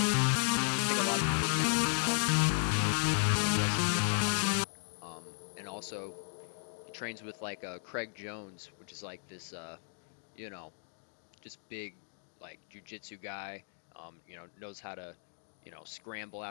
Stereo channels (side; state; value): right; silent; 54 dB below the other